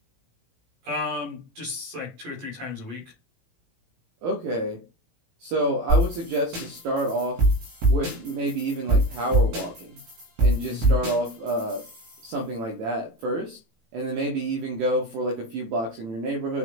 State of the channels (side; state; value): left; late; 18 ms